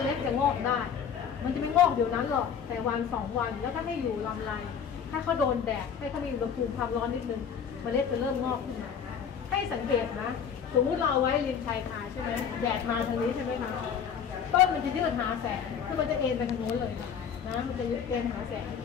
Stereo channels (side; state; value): right; quieter; 7.4 dB